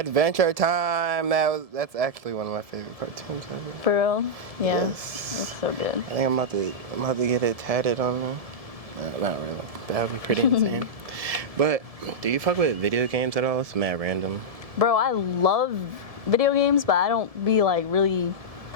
Time. That's actually one of my favorite cartoons ever. For real? Yeah. Yes. It's so good. I think I'm about to get it tatted on me. Not really. That would be pretty insane. But do you fuck with video games at all? It's mad random. Bro, I love video games, but I don't be like really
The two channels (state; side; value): late; left; 1.7 ms